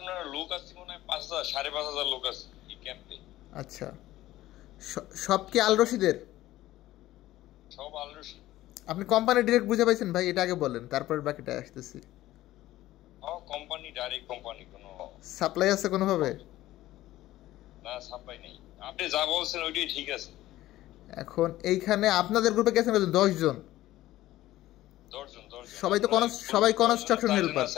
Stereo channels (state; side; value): quieter; right; 15.5 dB